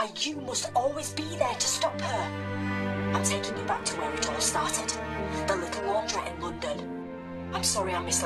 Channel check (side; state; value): both; identical; correlation 1.00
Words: you must always be there to stop her. I'm taking you back to where it all started. The little laundrette in London. I'm sorry I